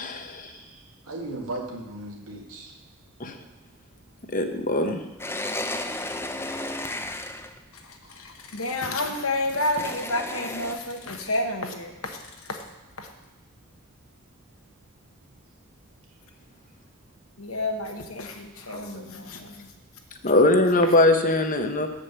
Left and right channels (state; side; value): normal; both; correlation 0.00